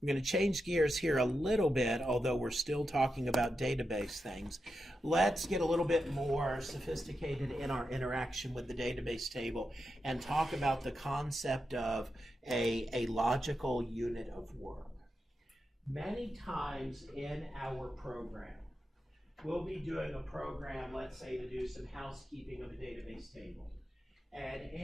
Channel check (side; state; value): both; normal; correlation 0.88